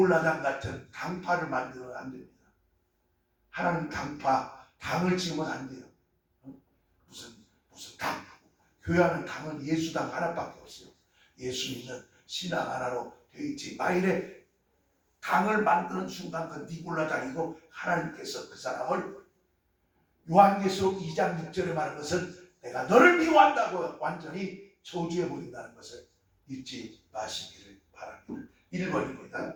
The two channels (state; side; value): identical; both; correlation 1.00